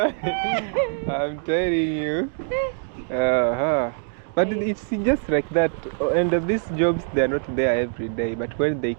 I'm telling you. But it's just like that. And these jobs, they're not there every day. But when they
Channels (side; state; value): left; silent; 63 dB below the other